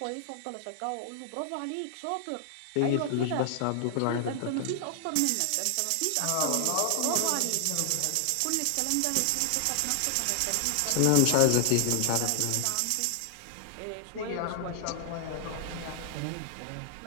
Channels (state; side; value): different; both; correlation 0.00